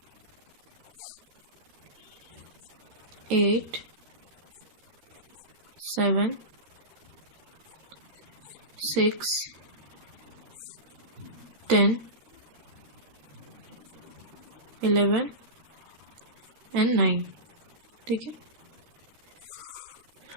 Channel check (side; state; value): left; late; 13 ms